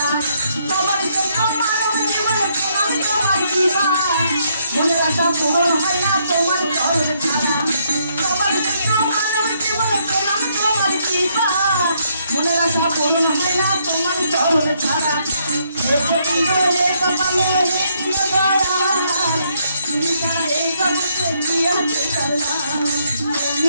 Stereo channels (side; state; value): both; inverted; correlation -0.73